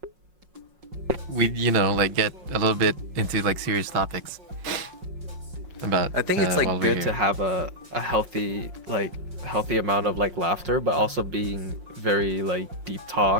We, like, get a little bit into, like, serious topics. about. I think it's like while we're good here. to have a healthy amount of like laughter, but also being very like deep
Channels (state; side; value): late; left; 5.5 ms